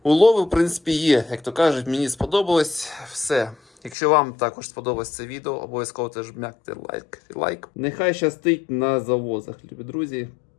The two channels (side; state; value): right; drops out; at 4.0 s